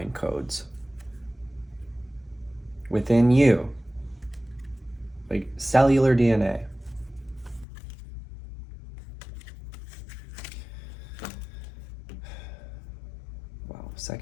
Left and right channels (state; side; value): drops out; right; at 7.7 s